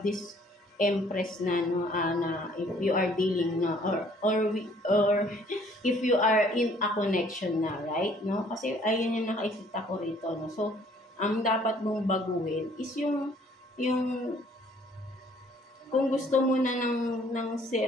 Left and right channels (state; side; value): normal; both; correlation 0.59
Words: this Empress na no, na if you are dealing na or if you are in a connection na, right? No, kasi ayun yung nakikita ko rito, no. So ang dapat mong baguhin is yung kung gusto mo na